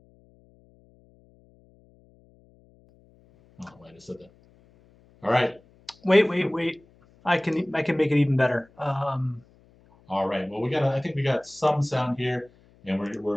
Oh, wait, I said that. All right. Wait. I can make it even better. All right. Well, I think we got some sound here, and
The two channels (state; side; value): noise; left; hum, 30 dB below the sound